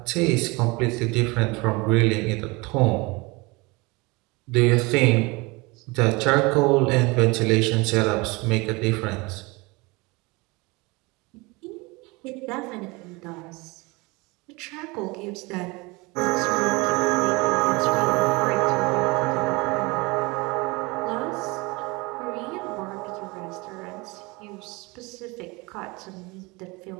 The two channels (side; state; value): left; quieter; 25.4 dB